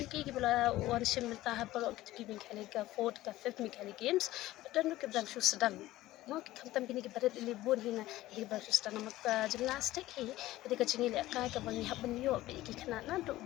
kita one sim mentah baru kita Meghalaya 4th ke 5th Meghalaya Games. Dan kita berang sedang. Mau kita kini kita berada di libur hina di baru sedang nama gymnastik hi. Jadi kecil ialehkai ke bangi hab benyo bagi kena naduk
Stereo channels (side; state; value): right; quieter; 16.3 dB